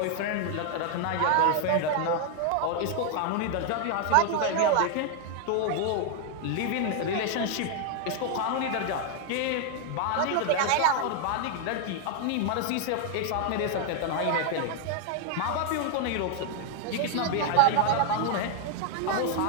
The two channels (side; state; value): both; different; correlation 0.00